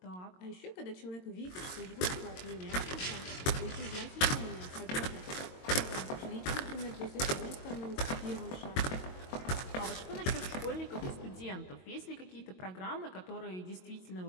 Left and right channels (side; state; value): right; late; 22 ms